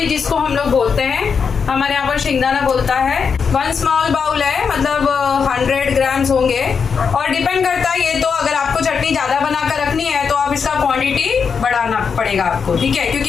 जिसको हम लोग बोलते हैं, हमारे यहाँ पर शेंगदाना बोलता है। 1 स्मॉल बाउल है, मतलब 100 ग्राम्स होंगे। और डिपेंड करता है, ये तो अगर आपको चटनी ज्यादा बनाकर रखनी है तो आप इसका क्वांटिटी बढ़ाना पड़ेगा आपको, ठीक है, क्योंकि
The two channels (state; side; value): quieter; right; 6.1 dB